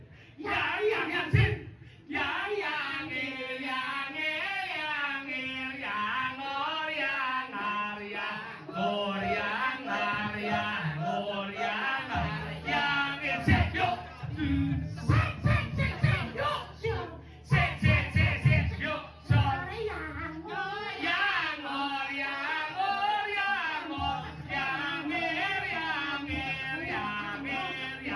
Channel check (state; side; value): identical; both; correlation 1.00